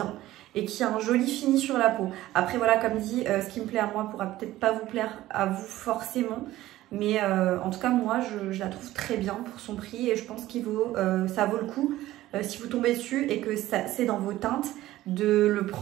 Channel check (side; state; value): left; quieter; 15.6 dB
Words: et qui a un joli fini sur la peau. Après, voilà, comme dit, ce qui me plaît à moi pourra peut-être pas vous plaire à vous forcément. Mais en tout cas, moi, je la trouve très bien pour son prix et je pense ça vaut le coup. Si vous tombez dessus et que c'est dans vos teintes, de le